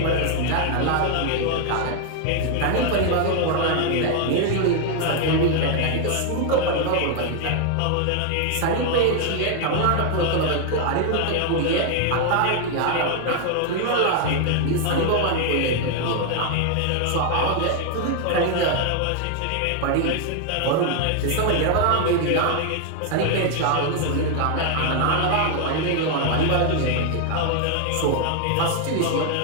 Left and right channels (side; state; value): both; different; correlation 0.00